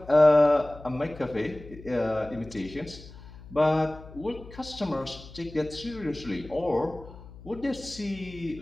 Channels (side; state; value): left; noise; hum, 17 dB below the sound